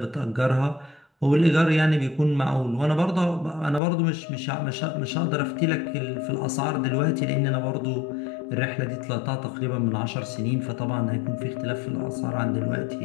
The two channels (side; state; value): right; drops out; at 3.8 s